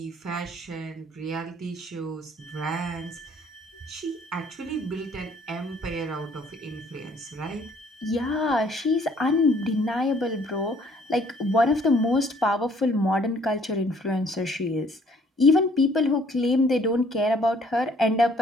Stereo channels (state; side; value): normal; both; correlation 0.60